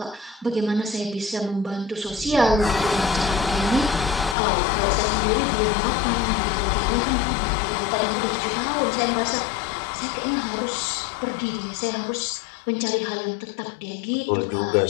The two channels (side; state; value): right; drops out; at 4.4 s